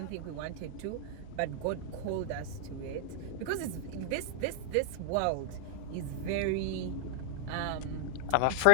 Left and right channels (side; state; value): both; different; correlation -0.01